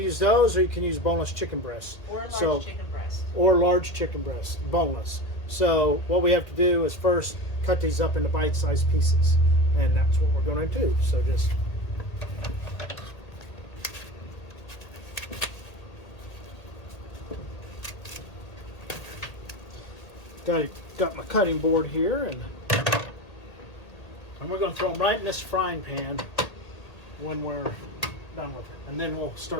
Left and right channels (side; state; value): right; late; 1.8 ms